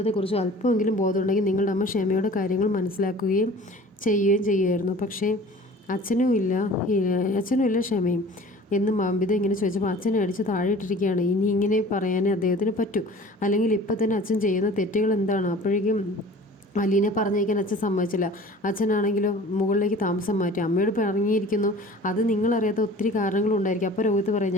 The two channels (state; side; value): normal; both; correlation 0.45